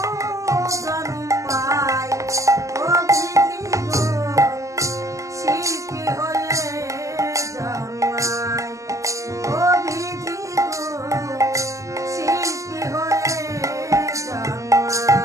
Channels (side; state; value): left; late; 0.16 ms